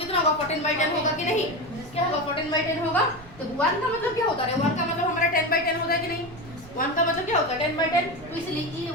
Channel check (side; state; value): right; noise; rumble, 20 dB below the sound